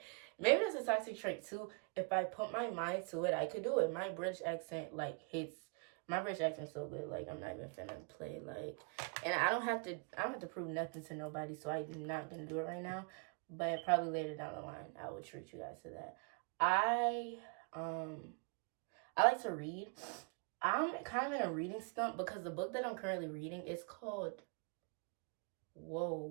maybe that's a toxic trait too. If I put my mind to it, I could do it. My British accent like hits. My British accent's so good. Like, I'm not even finna play. Like, and I don't have to prove nothing to nobody. So I'm not gonna do it right now. But probably later down the line, I will treat you guys to that. I I like to read. I'm kind of in a reading slump because the book that I'm currently reading is called.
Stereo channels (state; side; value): quieter; left; 36.7 dB